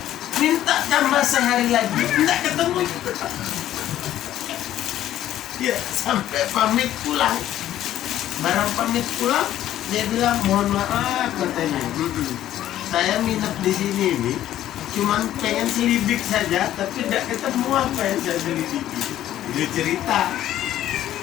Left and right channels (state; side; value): quieter; right; 12.5 dB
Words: Minta tambah sehari lagi, nggak ketemu juga. Ya, sampai pamit pulang. Barang pamit pulang, dia bilang, mohon maaf katanya. Saya minat di sini nih, cuman pengen selibik saja, tapi tidak ketemu apa yang saya selidiki. Dia cerita,